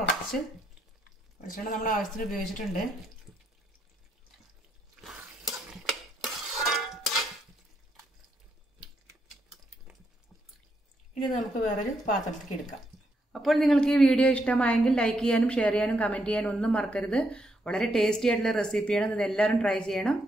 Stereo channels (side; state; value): both; normal; correlation 0.77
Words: വെളിച്ചെണ്ണ നമ്മൾ ആവശ്യത്തിന് ഉപയോഗിച്ചിട്ടുണ്ട്. ഇനി നമുക്ക് വേറൊരു പാത്രത്തിലേക്ക് എടുക്കാം. അപ്പോൾ നിങ്ങൾക്ക് ഈ വീഡിയോ ഇഷ്ടമായെങ്കിൽ ലൈക്ക് ചെയ്യാനും ഷെയർ ചെയ്യാനും കമൻറ്റ് ചെയ്യാനും ഒന്നും മറക്കരുത്. വളരെ ടേസ്റ്റി ആയിട്ടുള്ള റെസിപ്പിയാണ്. ഇത് എല്ലാവരും ട്രൈ ചെയ്യണം.